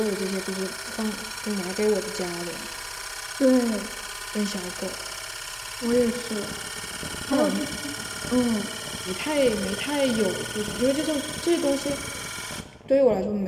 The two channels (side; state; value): both; identical; correlation 1.00